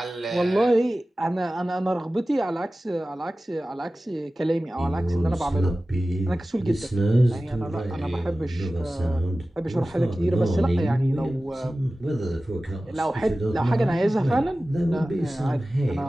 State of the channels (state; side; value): normal; both; correlation 0.96